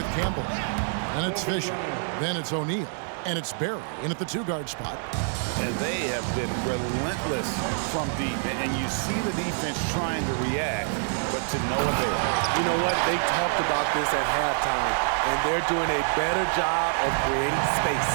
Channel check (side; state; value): left; silent; digital silence